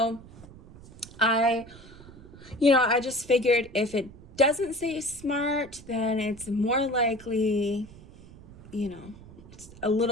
I just figured if it doesn't say smart, then it's more likely, it's a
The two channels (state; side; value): noise; right; rumble, 19 dB below the sound